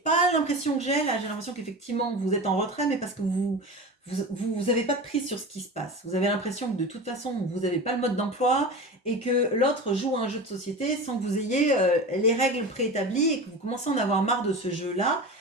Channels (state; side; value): normal; both; correlation 0.29